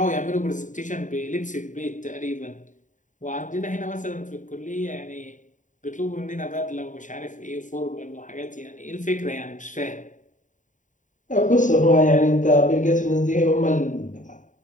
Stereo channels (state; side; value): late; right; 0.37 ms